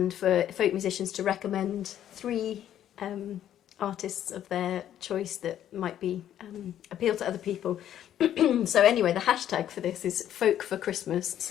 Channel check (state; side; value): quieter; right; 10.9 dB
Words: for folk musicians to recommend 3 artists of their choice that might be appeal to other people. So anyway, the hashtag for this is Folk for Christmas.